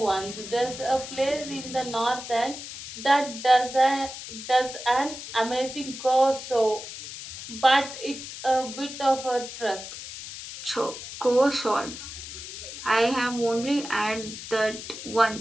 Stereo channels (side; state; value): left; noise; hiss, 11 dB below the sound